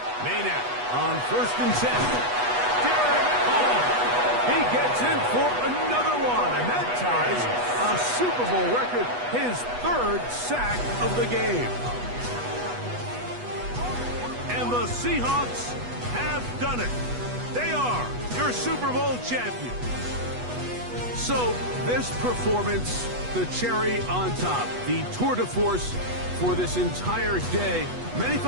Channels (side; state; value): left; late; 8.2 ms